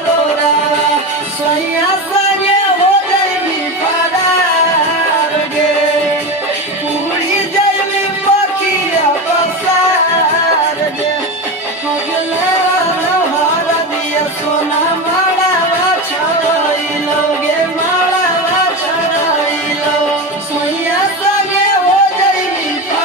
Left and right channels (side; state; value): both; normal; correlation 0.21